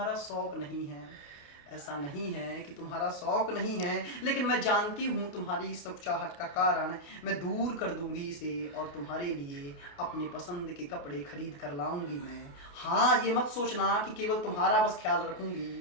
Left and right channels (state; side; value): late; right; 28 ms